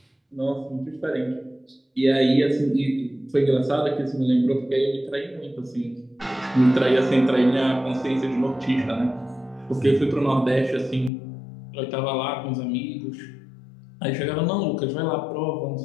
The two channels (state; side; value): drops out; right; at 11.1 s